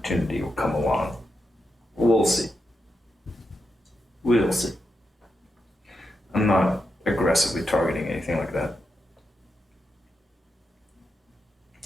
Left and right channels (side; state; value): both; normal; correlation 0.86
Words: will come along. We'll see. We'll see. I'm not aggressively targeting anything like that.